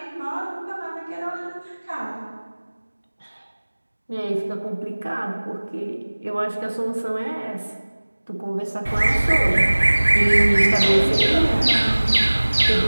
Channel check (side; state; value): both; inverted; correlation -1.00